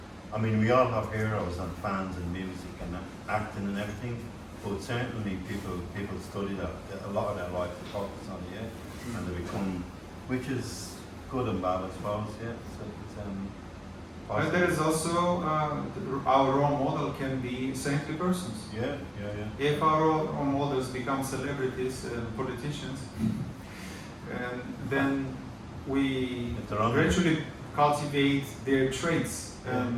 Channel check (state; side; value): identical; both; correlation 1.00